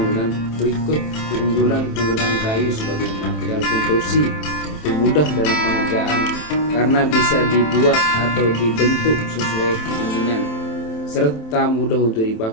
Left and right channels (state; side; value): late; right; 27 ms